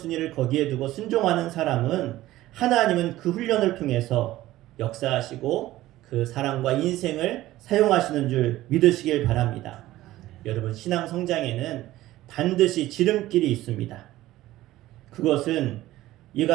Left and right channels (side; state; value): left; quieter; 15.9 dB